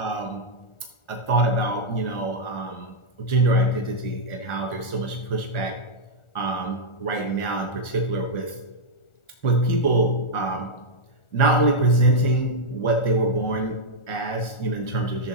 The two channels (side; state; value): right; late; 1.4 ms